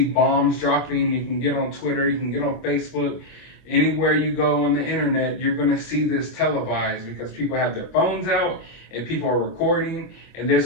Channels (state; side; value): late; right; 24 ms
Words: bombs dropping. You can get on Twitter. You can get on Facebook. Anywhere you go on the internet, you're going to see this televised because people have their phones out and people are recording, and there's